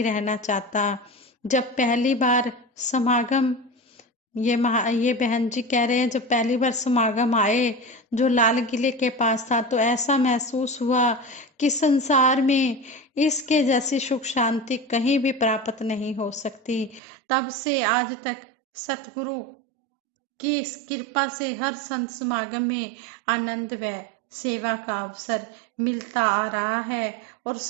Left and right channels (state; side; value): drops out; left; at 17.0 s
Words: रहना चाहता। जब पहली बार समागम ये बहन जी कह रहे हैं जब पहली बार समागम आए जो लाल किले के पास था तो ऐसा महसूस हुआ कि संसार में इसके जैसी सुख शांति कहीं भी प्राप्त नहीं हो सकती। तब से आज तक सतगुरु की इस कृपा से हर संत समागम में आनंद व सेवा का अवसर मिलता आ रहा है और